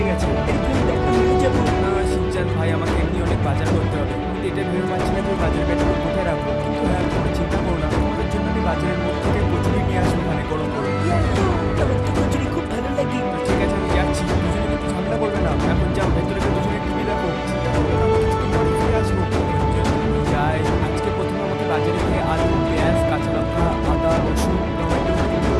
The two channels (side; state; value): both; identical; correlation 1.00